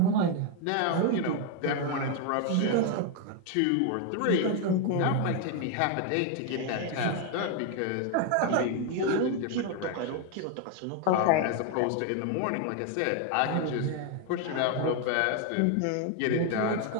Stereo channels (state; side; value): different; both; correlation 0.01